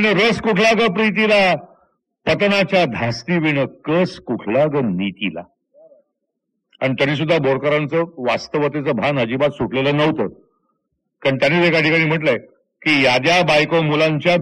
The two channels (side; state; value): both; identical; correlation 1.00